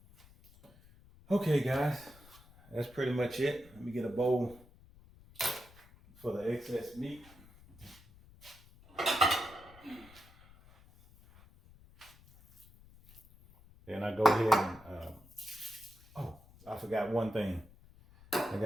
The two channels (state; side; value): noise; left; rumble, 24 dB below the sound